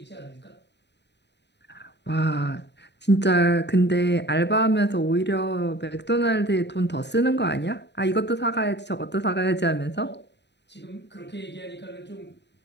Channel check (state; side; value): late; right; 0.50 ms